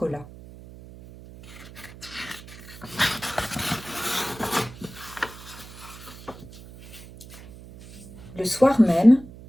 Le soir même,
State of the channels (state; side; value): noise; right; hum, 17 dB below the sound